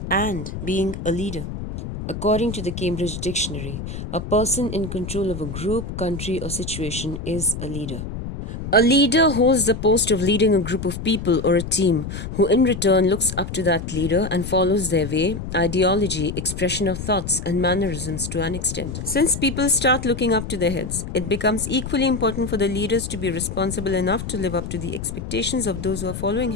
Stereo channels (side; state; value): left; noise; rumble, 7 dB below the sound